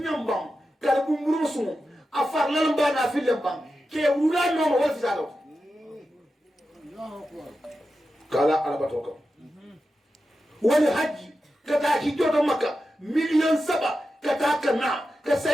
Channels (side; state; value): both; normal; correlation 0.90